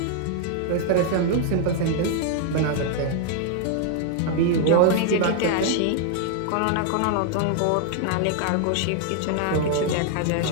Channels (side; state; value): both; different; correlation 0.00